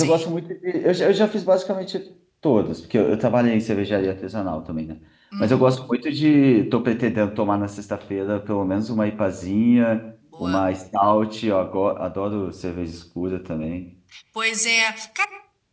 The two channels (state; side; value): identical; both; correlation 1.00